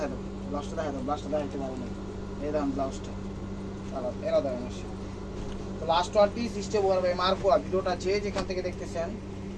দাও, ব্লাউজটা দেখা দাও, ব্লাউজটা দেখাতে পারো না। এই দেখেন ব্লাউজটা আবার এরা দেখেন আসে। তো last one piece step over by মার্কোয়া। ভিডিওটা যে যেখান থেকে দেখতেছেন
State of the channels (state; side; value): identical; both; correlation 1.00